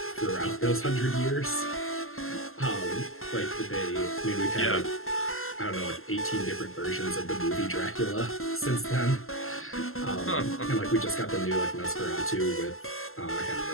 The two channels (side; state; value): right; late; 0.62 ms